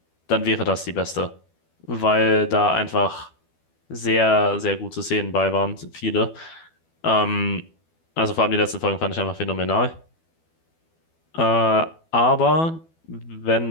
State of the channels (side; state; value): right; late; 12 ms